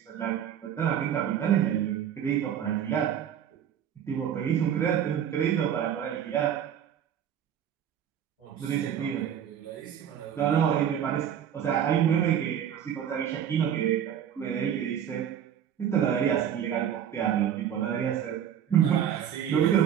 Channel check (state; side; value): quieter; left; 9.4 dB